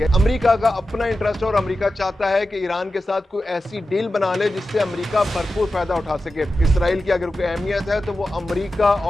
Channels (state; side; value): normal; both; correlation 0.92